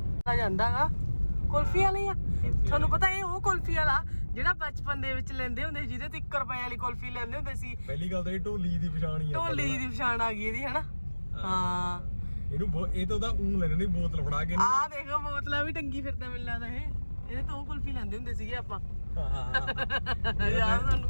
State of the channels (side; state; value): both; inverted; correlation -1.00